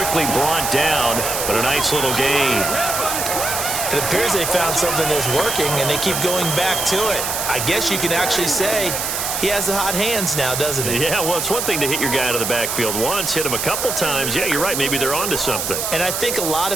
brought down. But a nice little gain. It appears they found something that's working, and they keep going back to it. I guess you can actually say he has the hot hands now, doesn't he? Yeah, well, it's one thing to hit your guy out of the backfield once, hit him a couple times. Yeah, you're right. Maybe they're onto something. And I think a lot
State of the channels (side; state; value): right; noise; hiss, 2 dB below the sound